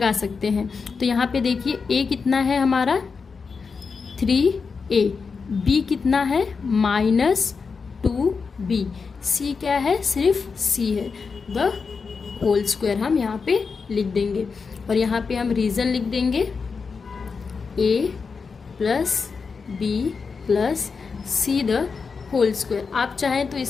सकते हैं। तो यहाँ पे देखिए a कितना है हमारा 3a, b कितना है -2b, c क्या है सिर्फ c है, द होल स्क्वायर हम यहाँ पे लिख देंगे। और यहाँ पे हम रीज़न लिख देंगे a plus b plus c the whole square. आप चाहें तो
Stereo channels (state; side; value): quieter; right; 5.1 dB